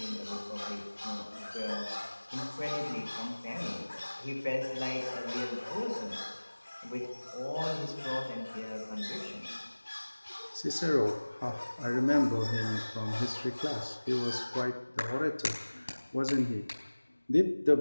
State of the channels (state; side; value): inverted; both; correlation -1.00